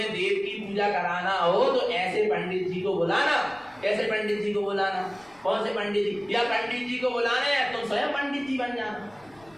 देव की पूजा कराना हो तो ऐसे पंडित जी को बुलाना। कैसे पंडित जी को बुलाना? कौन से पंडित जी? या पंडित जी को बुलाना है तुम स्वयं पंडित जी बन जाना।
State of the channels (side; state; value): left; noise; rumble, 29 dB below the sound